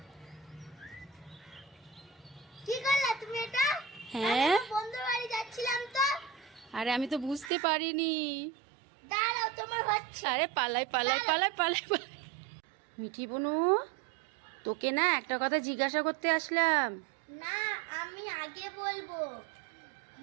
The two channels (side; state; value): left; drops out; at 7.5 s